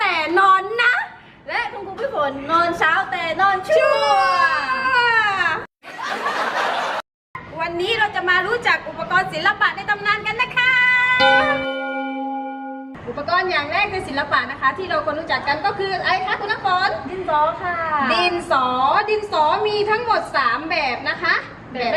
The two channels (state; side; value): identical; both; correlation 1.00